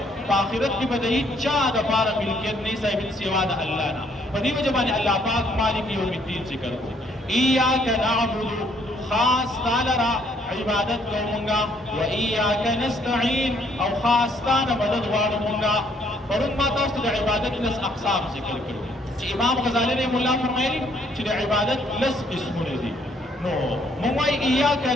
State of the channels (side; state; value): both; normal; correlation 0.66